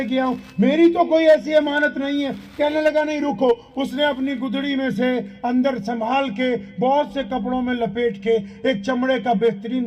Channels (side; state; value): both; identical; correlation 1.00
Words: گیا ہوں, میری تو کوئی ایسی امانت نہیں ہے. کہنے لگا نہیں رکو. اس نے اپنی گدڑی میں سے اندر سنبھال کے بہت سے کپڑوں میں لپیٹ کے ایک چمڑے کا بہترین